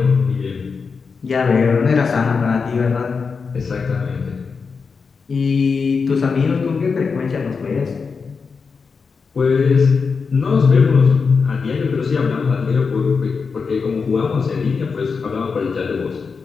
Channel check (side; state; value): right; quieter; 5.2 dB